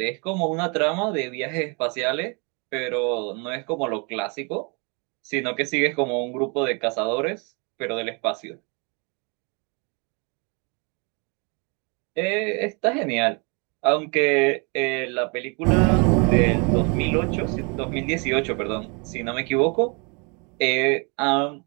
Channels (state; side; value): quieter; left; 33.1 dB